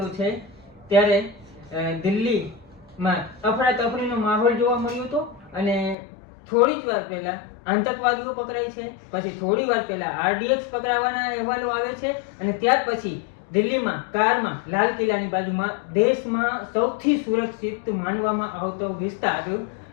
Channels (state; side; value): drops out; right; at 6.0 s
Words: છે ત્યારે દિલ્હીમાં અફરાતફરીનો માહોલ જોવા મળ્યો હતો અને થોડી જ વાર પહેલા આતંકવાદીઓ પકડાય છે, પછી થોડી વાર પહેલા આરડીએક્સ પકડાવાના અહેવાલો આવે છે અને ત્યાર પછી દિલ્હીમાં કારમાં લાલ કિલ્લાની બાજુમાં દેશમાં સૌથી સુરક્ષિત માનવામાં આવતો વિસ્તાર